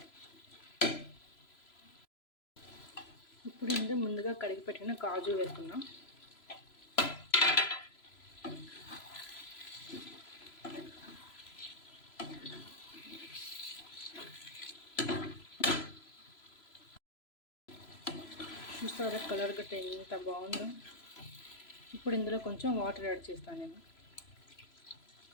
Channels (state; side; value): late; right; 3.0 ms